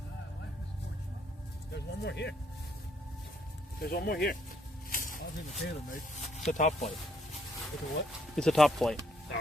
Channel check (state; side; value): normal; both; correlation 0.70